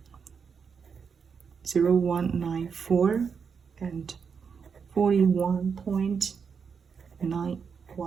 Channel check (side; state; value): left; quieter; 6.2 dB